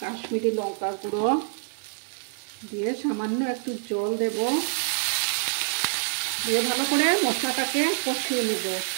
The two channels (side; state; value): left; silent; digital silence